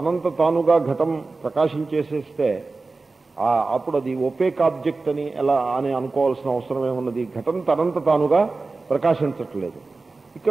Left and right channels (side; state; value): left; quieter; 3.7 dB